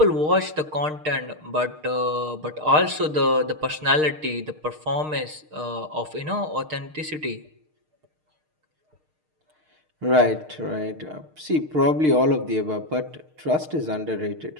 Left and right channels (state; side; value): late; left; 6.5 ms